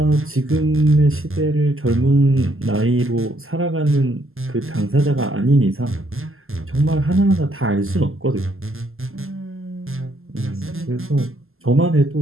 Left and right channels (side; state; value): left; late; 0.61 ms